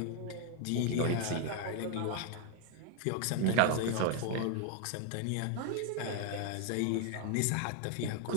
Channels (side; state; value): both; different; correlation 0.01